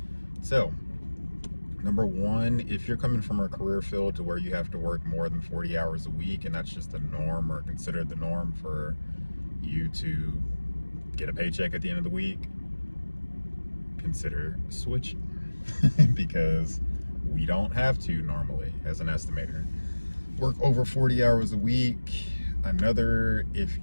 So, number one, if you're coming from a career field to where you have to work more than 40 hours a week and that's just the norm or considered the norm for you to get a paycheck at the end of the week, consider switching because we don't have to normally as an estimator work over 40 hours a week. Another, if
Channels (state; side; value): inverted; both; correlation -1.00